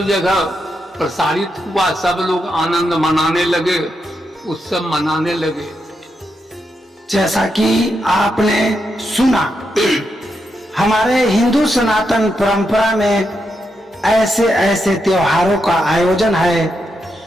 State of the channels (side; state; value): both; normal; correlation 0.83